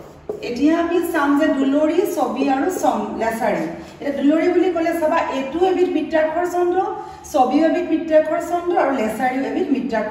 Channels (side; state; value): both; identical; correlation 1.00